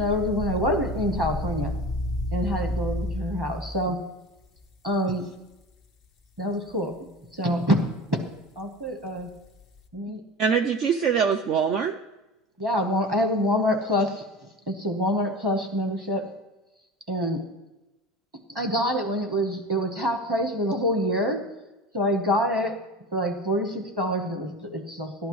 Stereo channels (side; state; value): both; normal; correlation 0.33